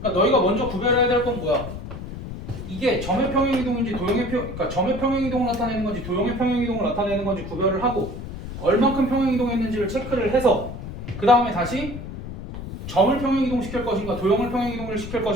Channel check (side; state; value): left; noise; rumble, 9 dB below the sound